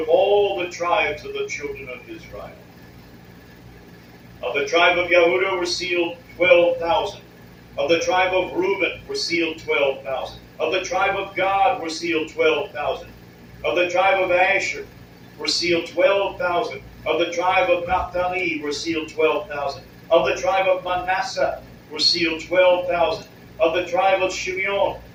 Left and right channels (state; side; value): identical; both; correlation 1.00